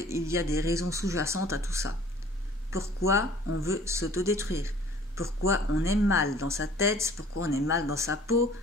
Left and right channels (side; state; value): both; normal; correlation 0.51